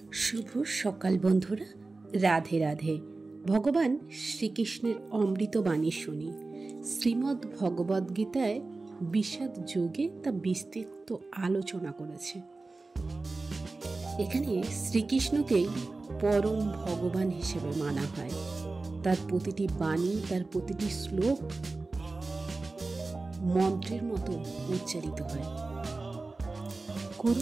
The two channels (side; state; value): left; quieter; 3.5 dB